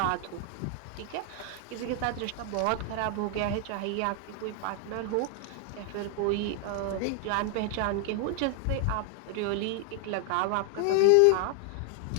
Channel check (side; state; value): both; different; correlation 0.00